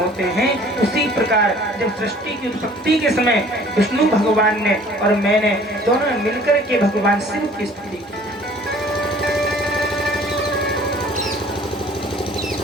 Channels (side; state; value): both; normal; correlation 0.52